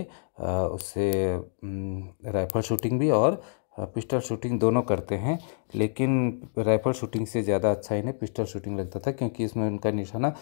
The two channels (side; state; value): right; silent; digital silence